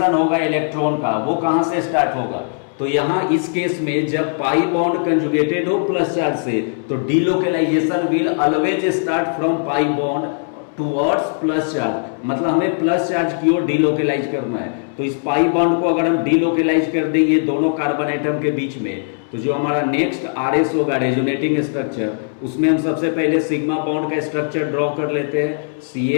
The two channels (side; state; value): right; silent; digital silence